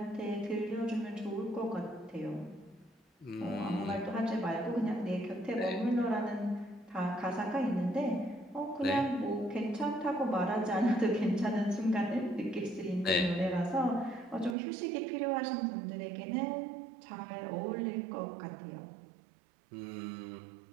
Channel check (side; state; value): left; drops out; at 14.6 s